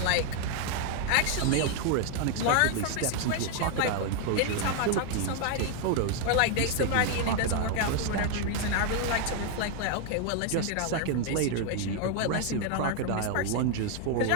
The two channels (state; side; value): different; both; correlation 0.00